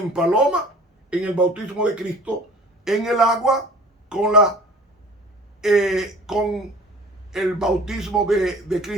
paloma, en el bautismo de Cristo, en el agua, con el bautismo de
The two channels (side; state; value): both; normal; correlation 0.46